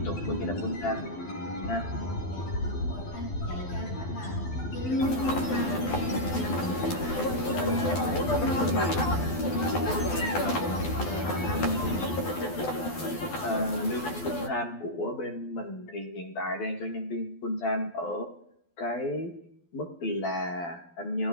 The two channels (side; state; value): right; late; 12 ms